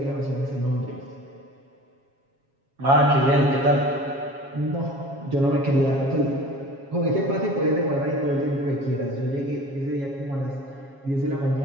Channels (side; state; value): left; late; 7.3 ms